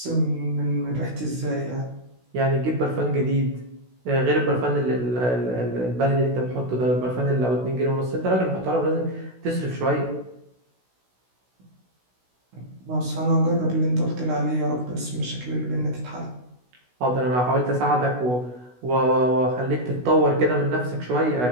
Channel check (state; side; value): late; left; 16 ms